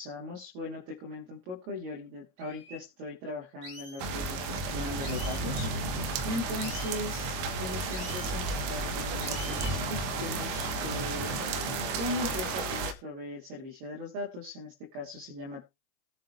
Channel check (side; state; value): left; late; 23 ms